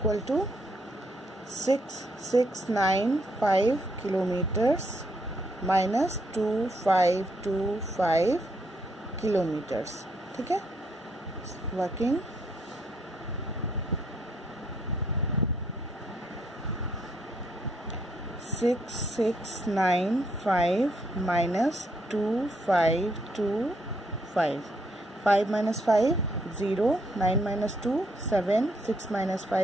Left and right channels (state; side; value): normal; both; correlation 0.74